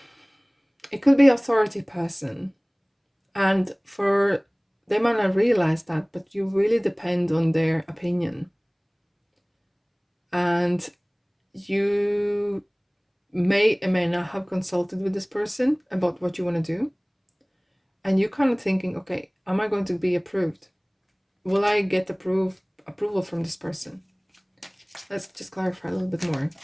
could be authority person. And they might not realize that, but you really depend on their opinion. And you may or may not have consulted with this person about what you want to do. And you're kind of thinking, okay, am I going to be approved? Will I get approval from this person? Let's just clarify a little bit more.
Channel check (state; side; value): identical; both; correlation 1.00